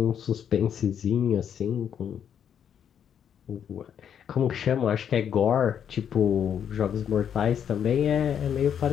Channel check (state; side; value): quieter; right; 8.6 dB